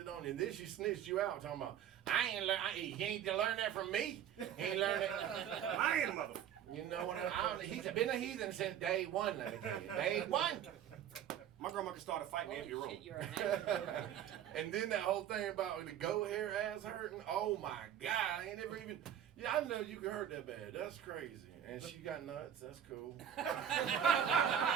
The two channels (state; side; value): quieter; left; 9.8 dB